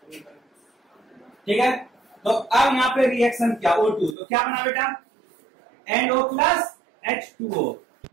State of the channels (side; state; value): left; drops out; at 4.2 s